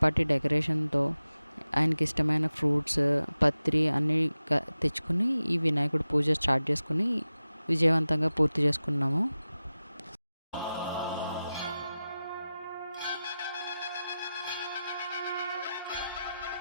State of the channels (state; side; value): inverted; both; correlation -0.94